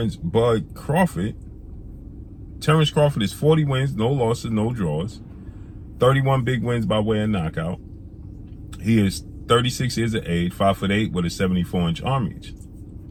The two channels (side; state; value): both; identical; correlation 1.00